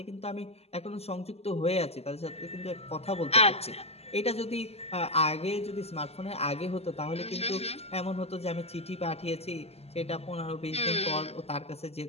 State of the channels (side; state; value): right; late; 0.30 ms